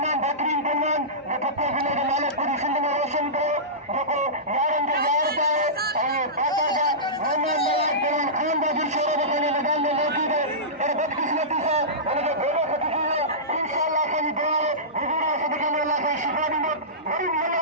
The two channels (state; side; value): normal; both; correlation -0.19